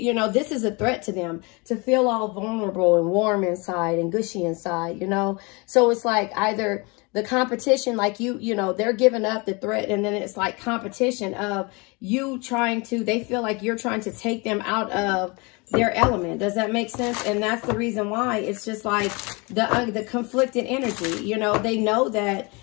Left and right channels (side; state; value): right; quieter; 28.5 dB